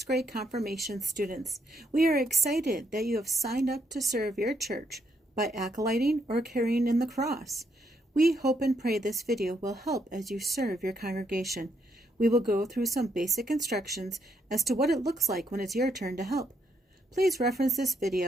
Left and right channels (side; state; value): both; normal; correlation 0.75